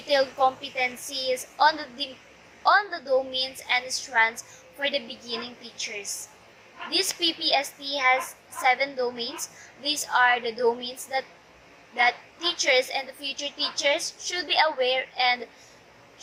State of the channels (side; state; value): both; identical; correlation 1.00